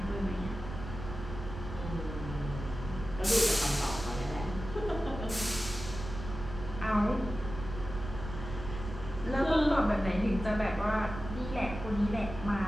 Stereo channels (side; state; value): right; noise; rumble, 9 dB below the sound